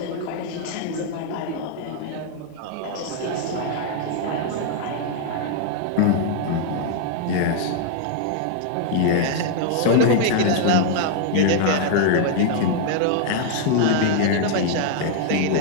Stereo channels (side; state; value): both; different; correlation 0.00